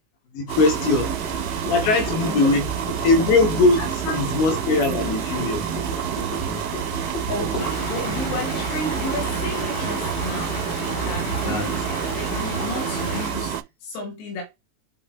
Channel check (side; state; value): right; late; 19 ms